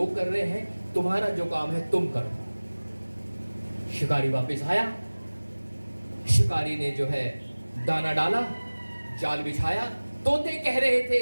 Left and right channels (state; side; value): inverted; both; correlation -1.00